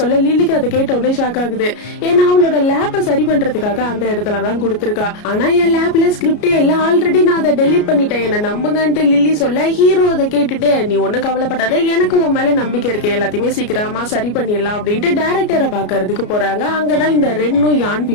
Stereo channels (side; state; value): right; late; 33 ms